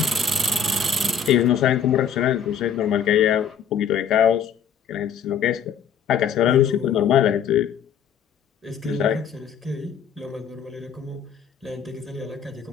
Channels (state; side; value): quieter; right; 7.5 dB